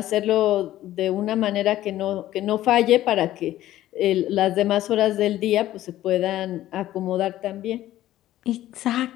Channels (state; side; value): quieter; right; 14.0 dB